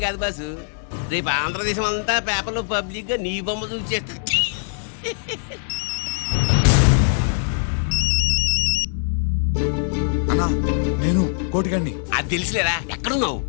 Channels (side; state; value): right; silent; digital silence